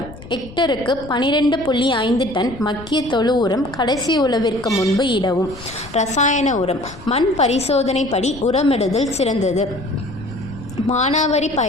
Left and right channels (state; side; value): noise; left; rumble, 16 dB below the sound